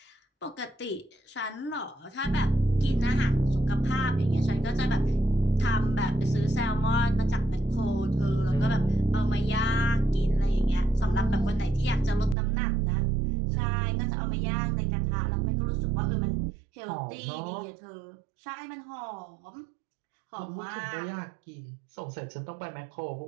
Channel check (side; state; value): left; drops out; at 12.4 s